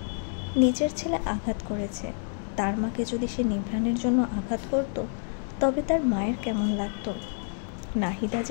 নিজের ছেলে আঘাত করেছে, তার মাকে যদি সে নিভ্রাণের জন্য আঘাত করত, তবে তার মায়ের কেমন লাগতো? নাহিদা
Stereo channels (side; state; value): right; silent; 59 dB below the other